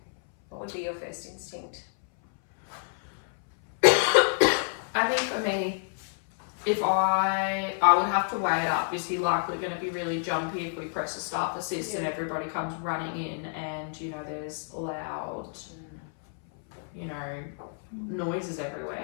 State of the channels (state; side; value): silent; right; 59 dB below the other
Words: What would be your first instinct? I think for me, if I would have to weigh it up. Is he likely going to be really jumpy if we press a staff assist and everybody comes running in and, you know, there's loud, you know, noises